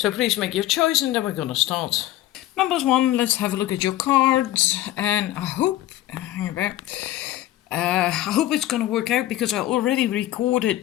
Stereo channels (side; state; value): right; quieter; 14.4 dB